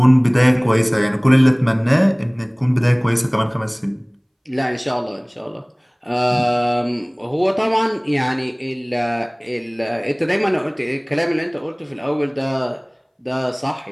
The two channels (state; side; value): identical; both; correlation 1.00